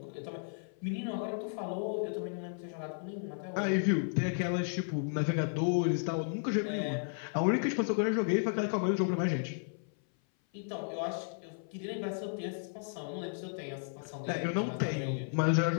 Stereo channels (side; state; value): right; silent; 55 dB below the other